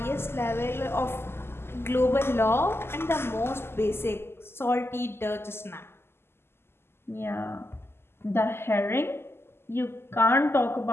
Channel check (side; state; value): right; late; 0.12 ms